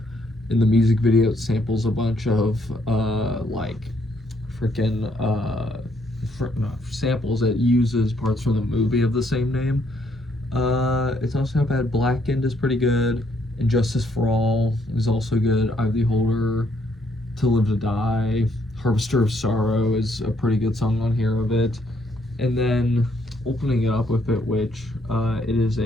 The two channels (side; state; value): both; normal; correlation 0.70